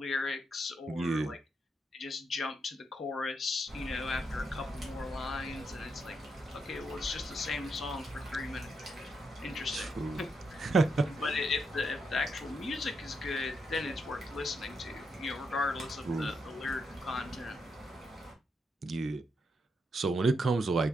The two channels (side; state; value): both; normal; correlation 0.81